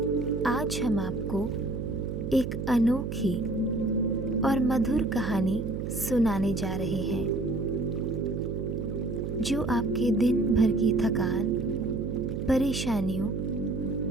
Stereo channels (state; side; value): noise; right; hum, 4 dB below the sound